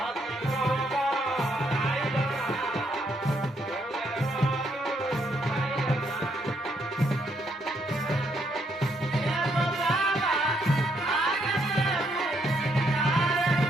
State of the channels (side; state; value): both; normal; correlation 0.74